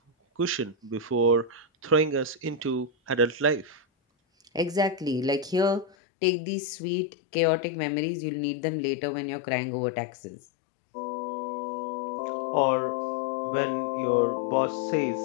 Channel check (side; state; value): right; drops out; at 6.0 s